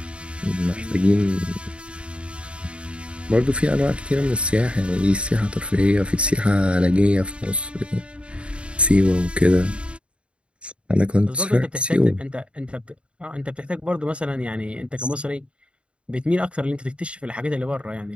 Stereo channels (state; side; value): late; left; 0.058 ms